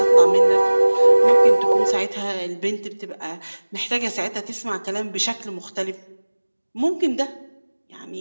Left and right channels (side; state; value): both; inverted; correlation -1.00